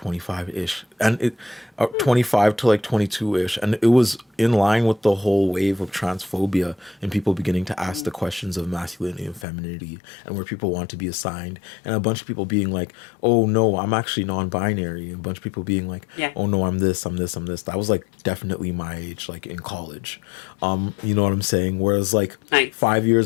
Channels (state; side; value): drops out; right; at 9.5 s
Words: and 25 to like 22-ish, and it was in line with the whole wave of transphobia and people beginning to ask the questions of masculinity and femininity and where people want to be assigned, and a bunch of people being like, oh no, I'm actually non-binary, and a bunch of people being like, oh no, I'm this. That was like definitely my age, like in college. You know what I'm saying? Whereas like 5